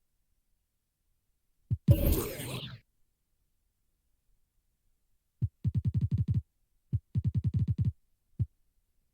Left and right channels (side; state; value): both; identical; correlation 1.00